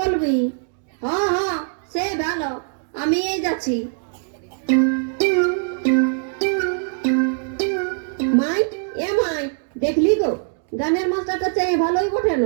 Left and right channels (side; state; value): left; silent; digital silence